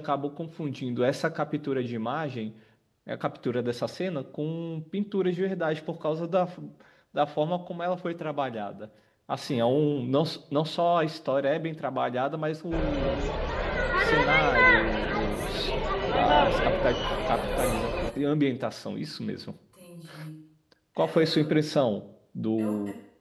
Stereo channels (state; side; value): identical; both; correlation 1.00